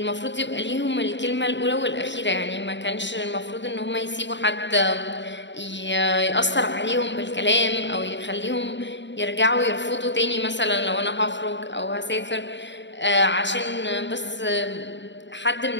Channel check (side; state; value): right; late; 0.52 ms